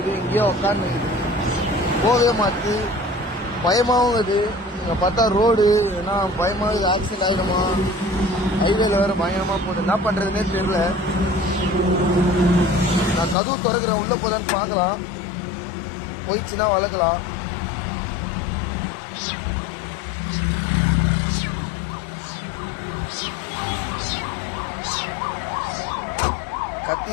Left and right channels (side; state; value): right; drops out; at 13.4 s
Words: எங்கேயோ உட்காந்து நிற்குது, போகவே மாற்று. பயமாகவும் இருக்குது. இங்கே பார்த்தா ரோடு ஏன்னா பயமாக ஆக்சிடென்ட் ஆகிடுமா, ஹைவேல வேறு பயங்கரமாக போகுது. என்ன பண்ணுறதுனே தெரியல. நான் கதவு திறக்கிறேன், உள்ளே போதுன்னு பார்க்கலாம், போயிடுச்சுன்னா வளர்க்கலாம்.